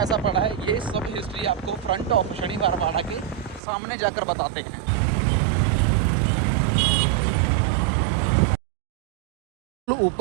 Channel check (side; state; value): left; drops out; at 3.6 s